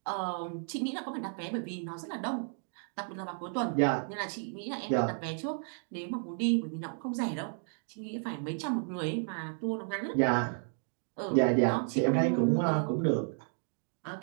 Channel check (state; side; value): silent; left; 56 dB below the other